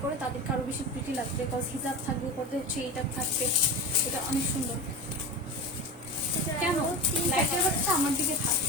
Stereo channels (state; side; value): normal; both; correlation 0.27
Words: করে তাদেরকে আরো বেশি প্রিটি লাগবে, বিকজ হিজাব থাকবে করতে হচ্ছে এইটা থাকবে। এটা অনেক সুন্দর। কেন লাইটের বাচ্চা আমার দিকে থাক,